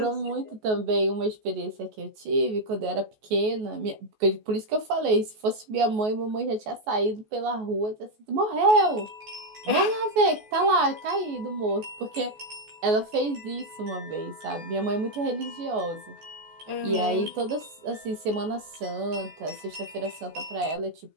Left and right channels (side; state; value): left; late; 14 ms